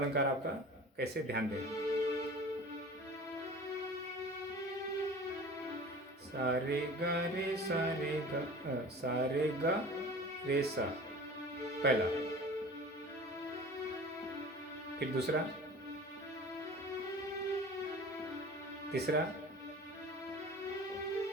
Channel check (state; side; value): normal; both; correlation 0.40